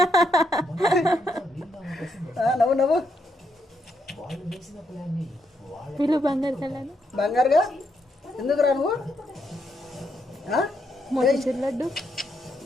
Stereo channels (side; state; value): both; normal; correlation 0.78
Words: నవ్వు వీళ్ళు బంగారు కళ్యాణ్ బంగారుగా ఎందుకు రా నువ్వు మోతీచూర్ లడ్డు